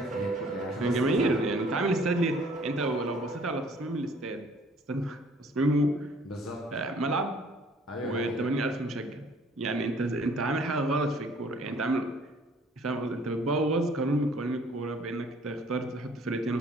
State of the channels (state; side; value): normal; both; correlation 0.57